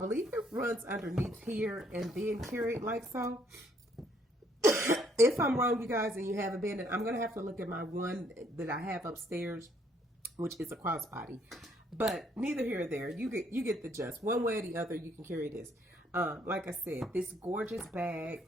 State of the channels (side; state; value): both; normal; correlation 0.67